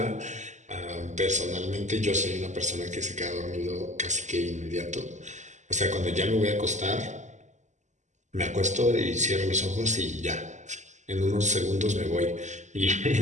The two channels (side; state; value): left; late; 0.34 ms